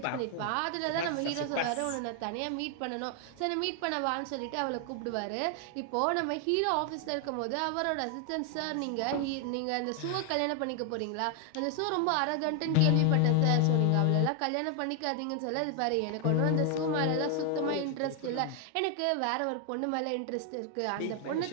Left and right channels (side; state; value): both; different; correlation 0.00